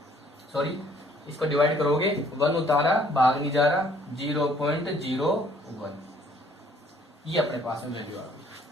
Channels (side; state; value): both; normal; correlation 0.61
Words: सॉरी इसको डिवाइड करोगे 1 उतारा भाग नहीं जा रहा 0.01, ये अपने पास में वैल्यू आ गई।